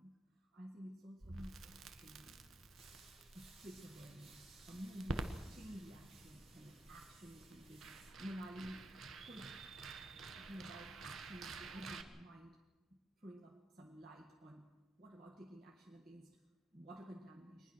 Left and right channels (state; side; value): normal; both; correlation 0.84